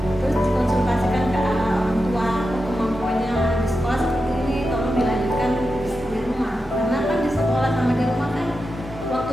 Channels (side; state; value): both; normal; correlation 0.89